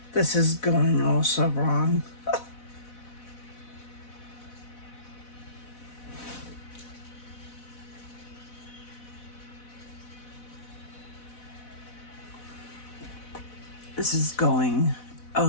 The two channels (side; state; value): right; late; 4.0 ms